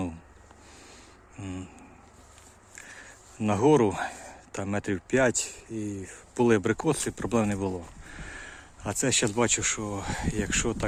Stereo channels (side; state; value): both; identical; correlation 1.00